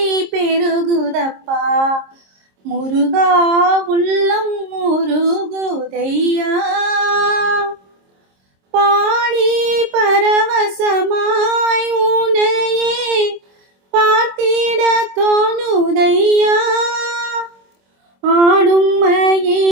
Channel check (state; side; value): late; left; 26 ms